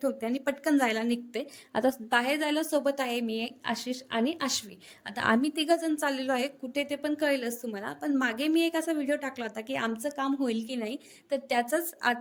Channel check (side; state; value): both; identical; correlation 1.00